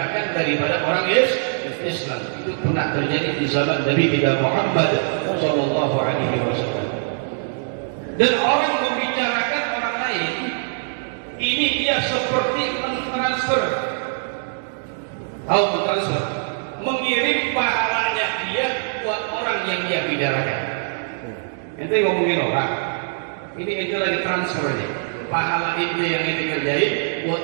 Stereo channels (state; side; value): silent; left; digital silence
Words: daripada orang Islam. Itu pernah terjadi di zaman Nabi kita Muhammad Sallallahu Alaihi Wasallam. Dan orang membicarakan orang lain, ini dia seperti mentransfer, mengirim pahalanya dia buat orang yang dia bicarakan. Ente ngomongin orang, ini ente lagi transfernya, pahala ente yang ente kerjain buat